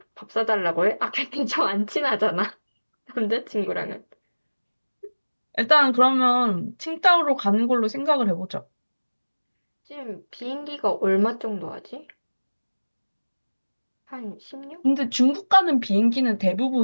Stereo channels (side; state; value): both; inverted; correlation -1.00